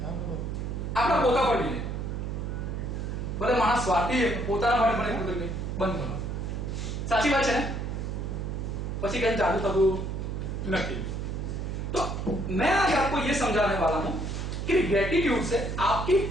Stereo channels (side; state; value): right; noise; hum, 3 dB below the sound